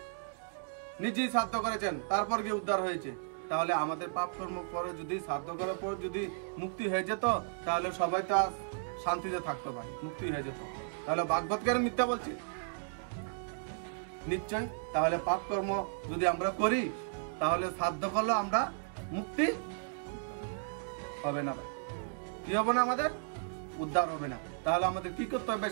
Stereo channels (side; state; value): left; silent; digital silence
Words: নিজেই শ্রাদ্ধ করেছেন, তারপর গিয়ে উদ্ধার হয়েছে। তাহলে আমাদের পাপ কর্ম পরে যদি শ্রাদ্ধ করার পর যদি মুক্তি হয়ে যেত, তাহলে সবাই তো আর শান্তিতে থাকতো ভাই, মুক্তি হয়ে যেত। তাহলে ভাগবত কেন মিথ্যা বলছে? নিশ্চয়। তাহলে পাপ কর্ম যদি আমরা করি, তাহলে শ্রাদ্ধ করলে আমরা মুক্তি হবে না ভাই। কি হবে না? আমাদের উদ্ধার হবে না। তাহলে আমাদের কি করতে হবে?